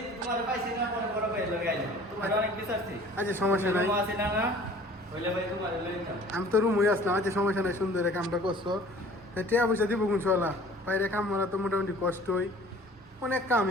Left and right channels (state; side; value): normal; both; correlation 0.49